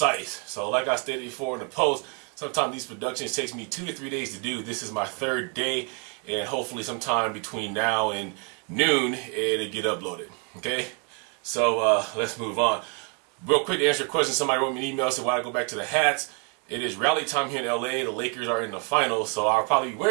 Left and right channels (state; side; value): quieter; left; 37.3 dB